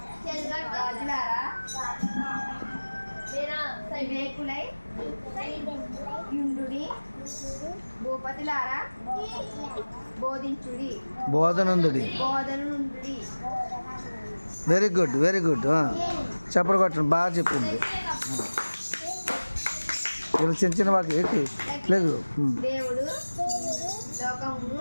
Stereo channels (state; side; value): inverted; both; correlation -1.00